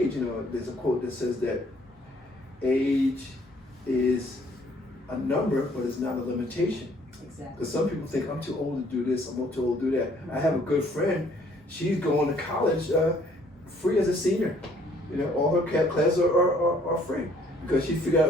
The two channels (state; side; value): normal; both; correlation 0.62